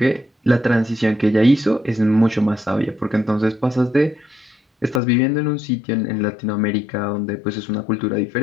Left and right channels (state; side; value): drops out; right; at 5.0 s